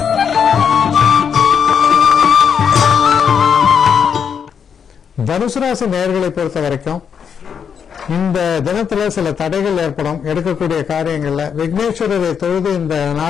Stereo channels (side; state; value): right; quieter; 7.2 dB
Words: தனுசு ராசி நேயர்களை பொறுத்த வரைக்கும் இந்த தினத்துல சில தடைகள் ஏற்படும். எடுக்கக்கூடிய காரியங்கள்ல விக்னேஸ்வரரை தொழுது இந்த